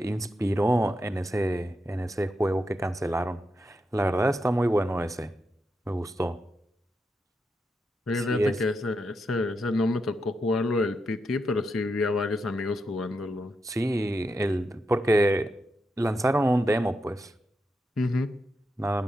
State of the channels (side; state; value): both; normal; correlation 0.85